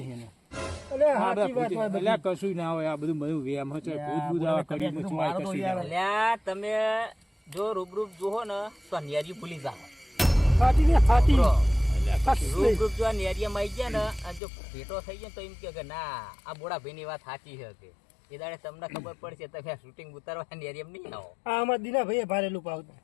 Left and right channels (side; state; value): right; drops out; at 14.4 s